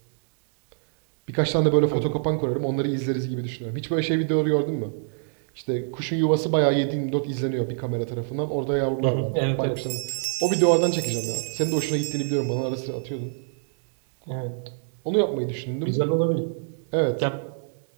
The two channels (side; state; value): left; silent; digital silence